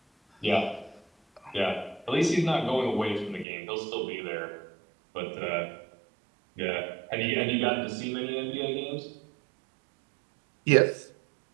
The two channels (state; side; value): drops out; left; at 3.5 s